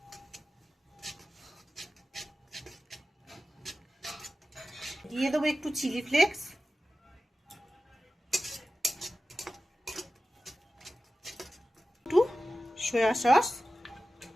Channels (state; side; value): normal; both; correlation 0.94